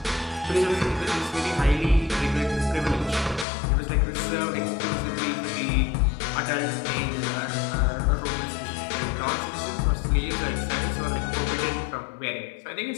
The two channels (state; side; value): drops out; right; at 3.5 s